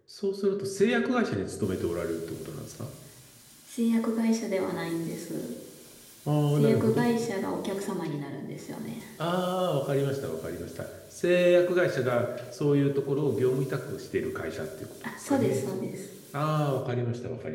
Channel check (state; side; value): identical; both; correlation 1.00